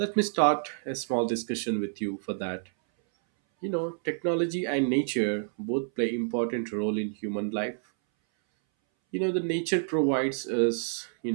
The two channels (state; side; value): silent; left; 59 dB below the other